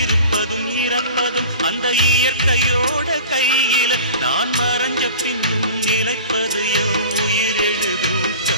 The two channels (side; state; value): both; inverted; correlation -0.40